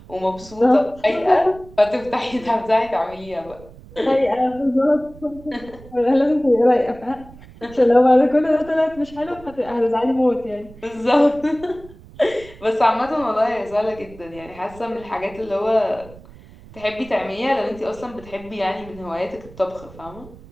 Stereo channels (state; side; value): noise; right; rumble, 20 dB below the sound